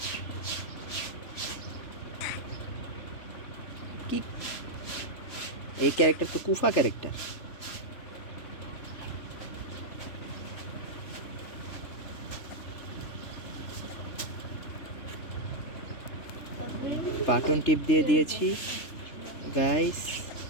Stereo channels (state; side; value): late; right; 3.3 ms